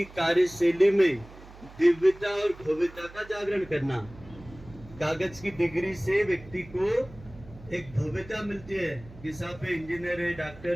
कार्यशैली में दिव्यता और भव्यता का जागरण करना। कागज की डिग्री से व्यक्ति को एक भव्यता मिलती है कि साहब इंजीनियर है,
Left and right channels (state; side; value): noise; right; hum, 19 dB below the sound